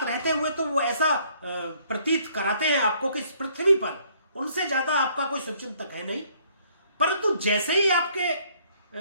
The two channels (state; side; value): inverted; both; correlation -0.63